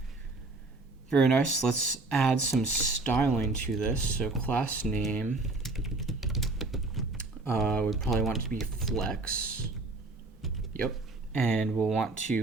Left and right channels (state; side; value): quieter; left; 3.3 dB